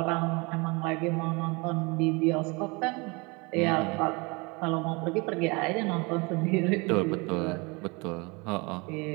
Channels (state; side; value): quieter; left; 27.9 dB